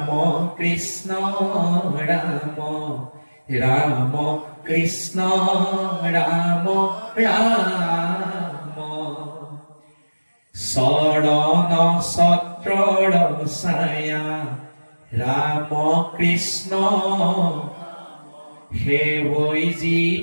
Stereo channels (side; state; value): both; inverted; correlation -1.00